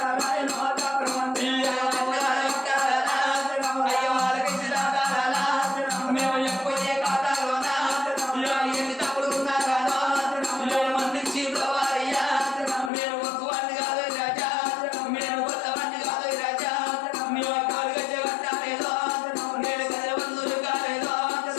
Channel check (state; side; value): drops out; right; at 12.9 s